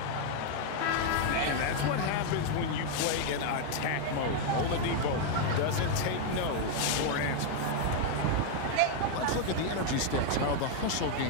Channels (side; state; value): both; different; correlation 0.00